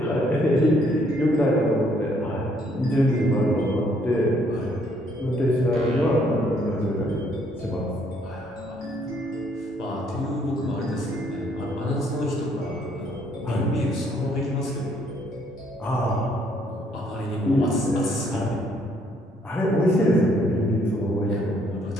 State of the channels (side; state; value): both; normal; correlation 0.67